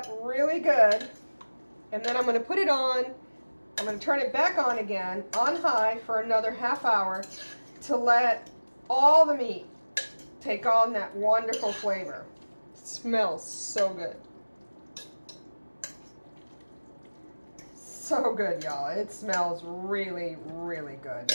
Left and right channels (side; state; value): both; inverted; correlation -1.00